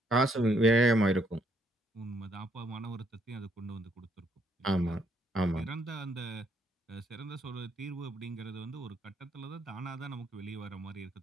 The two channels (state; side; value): normal; both; correlation 0.70